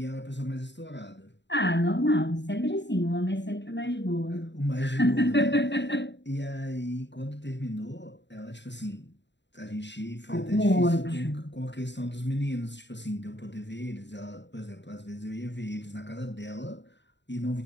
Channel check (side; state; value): right; late; 0.52 ms